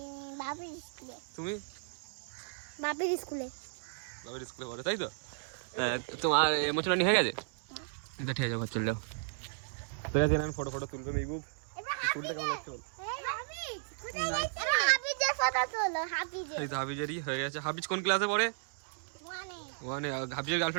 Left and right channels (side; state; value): left; silent; digital silence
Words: তুমি? বাবির স্কুলে পড়ো, তাই তো? তোমার ইমোশনালি হয়ে গেছে? এটা ঠিক আছে, ঘর চলে যাও। ঠিক আছে, এখন ফটো তুলবে মেহবুব। চুলটা কেমন লাগছে বল? এই তো হাবিজেরই হয়ে গেছে। হাবিজ কোন ক্লাসে পড়ে? ওয়ানে। হাবিজের